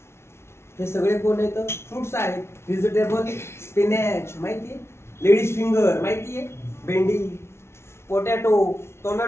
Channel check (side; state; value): right; late; 0.12 ms